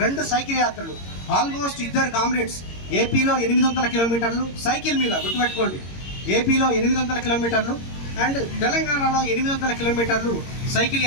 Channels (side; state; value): right; late; 22 ms